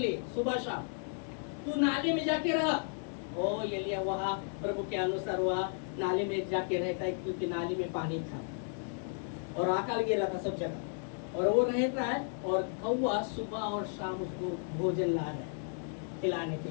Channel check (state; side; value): silent; right; 55 dB below the other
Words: सुबह शाम। तू नाले में जाके रहा। ओ एलिया वहाँ प्रभु के अनुसार वहाँ नाले में जाके रहता है, क्योंकि नाले में पानी था और अकाल गिरा था सब जगह, और वो रहता है और कौवा सुबह और शाम उसको भोजन ला रहा है खिलाने के